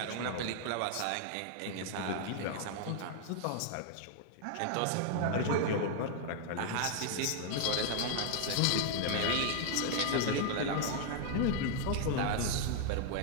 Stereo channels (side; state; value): both; different; correlation 0.00